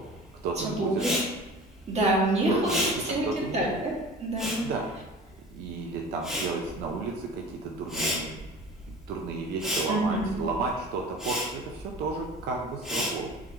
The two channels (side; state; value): both; normal; correlation 0.39